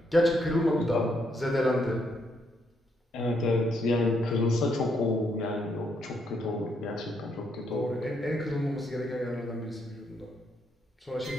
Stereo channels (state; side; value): normal; both; correlation 0.75